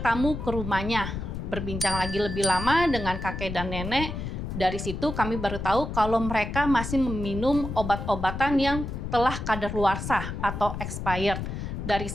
ke rumahnya. Berbincang lagi lebih lama dengan kakek dan nenek. Dari situ kami baru tahu kalau mereka masih meminum obat-obatan yang telah kadaluarsa atau expired. Dari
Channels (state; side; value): noise; left; rumble, 6 dB below the sound